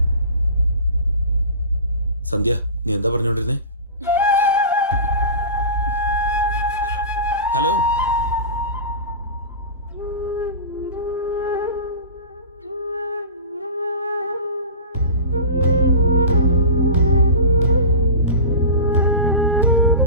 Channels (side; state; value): both; inverted; correlation -0.32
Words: സന്ധ്യ, നീ എന്താ പറഞ്ഞോണ്ടിരുന്നേ? ഹലോ,